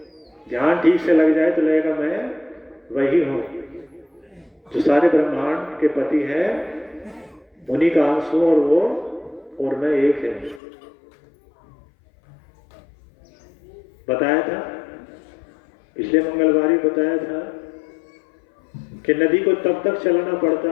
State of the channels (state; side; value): drops out; right; at 10.6 s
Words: ध्यान ठीक से लग जाए तो लगेगा मैं वही हूं जो सारे ब्रह्मांड के पति है, उन्हीं का अंश हूं और वो और मैं एक है। बताया था पिछले मंगलवार ही बताया था कि नदी को तब तक चलाना